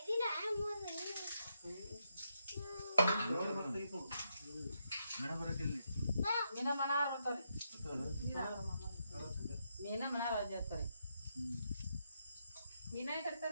ಮೀನ ಮನಾರ್ ಬರ್ತಾವ್ರಿ ಮೀನ ಮನಾರ್ ಮೀನೇ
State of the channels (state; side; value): inverted; both; correlation -0.81